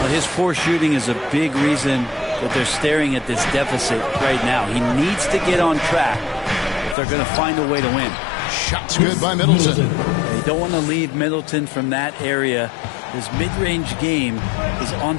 his poor shooting is a big reason that they're staring at this deficit right now. He needs to get on track if they're going to find a way to win. Shot's good by Middleton. They don't want to leave Middleton from that area. His mid-range game is on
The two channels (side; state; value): right; drops out; at 7.0 s